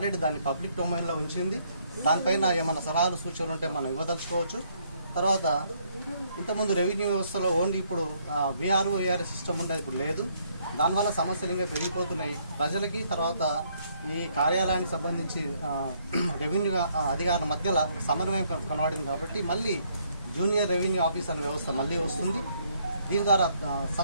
దాన్ని పబ్లిక్ డొమైన్లో ఉంచింది. దానిపైన ఏమైనా సలహాలు సూచనలు ఉంటే మనం ఇవ్వదలుచుకోవచ్చు. తర్వాత ఇంతకుముందు రెవెన్యూ వ్యవస్థలో ఓన్లీ ఇప్పుడు విఆర్ఓ ఏఆర్ఎస్ సిస్టమ్ ఉండేది, ఇప్పుడు లేదు. దానివల్ల సమస్యలు ఇంకా పెరిగిపోతున్నాయి ప్రజలకి. తర్వాత ఈ కార్యాలయానికి సంబంధించి రెవెన్యూ అధికారుల మధ్యలో సమన్వయం కనబడింది కాబట్టి మళ్ళీ జూనియర్ రెవెన్యూ ఆఫీస్ అనే వ్యవస్థ మళ్ళీ వస్తుంది. దీని ద్వారా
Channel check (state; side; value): inverted; both; correlation -0.69